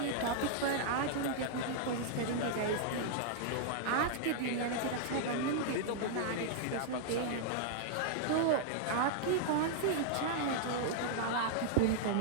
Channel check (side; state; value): both; different; correlation -0.01